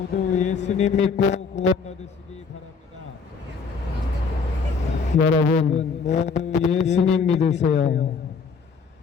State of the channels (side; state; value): right; quieter; 5.2 dB